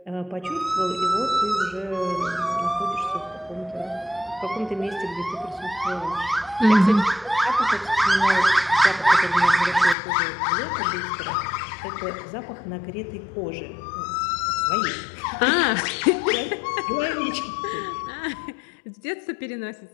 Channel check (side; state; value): right; drops out; at 10.0 s